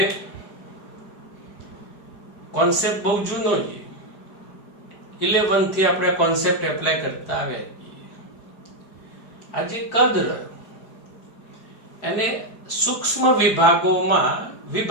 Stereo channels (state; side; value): late; right; 4.9 ms